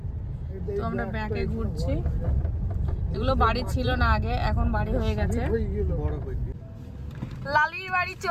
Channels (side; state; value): both; identical; correlation 1.00